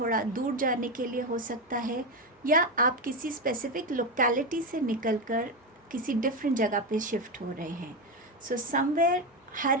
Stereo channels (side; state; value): both; normal; correlation 0.13